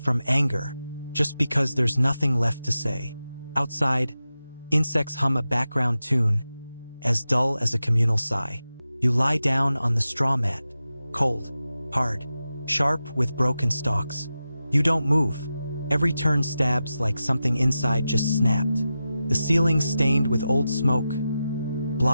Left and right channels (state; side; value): inverted; both; correlation -0.92